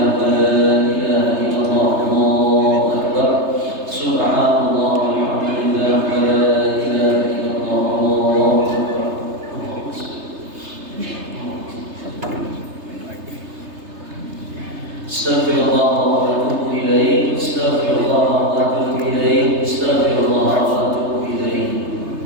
wa la ilaha illallah Allahu akbar. Subhanallah walhamdulillah wa la ilaha illallah Allahu akbar. Astaghfirullah wa atubu ilaih. Astaghfirullah wa atubu ilaih. Astaghfirullah wa atubu ilaih.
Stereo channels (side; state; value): left; late; 3.3 ms